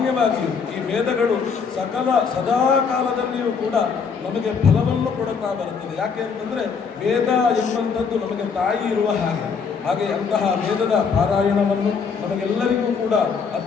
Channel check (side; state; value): right; quieter; 5.8 dB